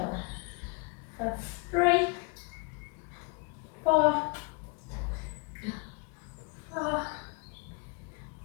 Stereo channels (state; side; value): quieter; right; 31.3 dB